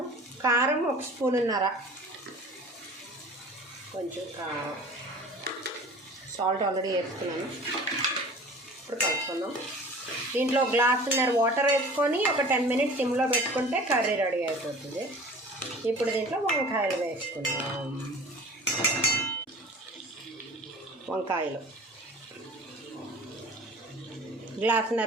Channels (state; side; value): normal; both; correlation 0.43